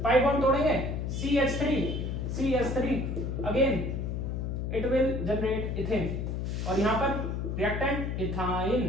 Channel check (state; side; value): noise; left; hum, 2 dB below the sound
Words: पाई बॉन्ड तोड़ेंगे CH3 again it will generate ethane और यहां पर reactant ethyne.